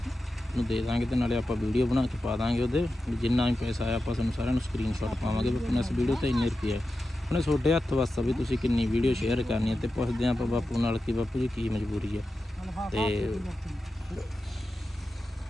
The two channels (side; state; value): both; normal; correlation 0.92